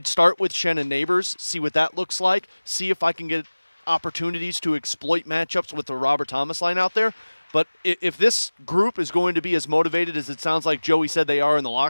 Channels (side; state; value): both; inverted; correlation -1.00